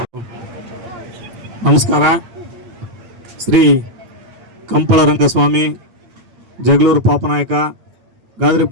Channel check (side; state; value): left; late; 8.8 ms